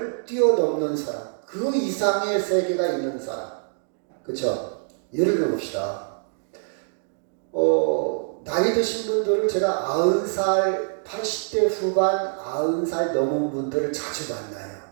뛰어넘는 사람, 그 이상의 세계가 있는 사람. 그렇죠? 예를 들어봅시다. 나이 드신 분들을 제가 90살, 80대 후반, 90살 넘은 분들을 자주 만나요.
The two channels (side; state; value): left; silent; digital silence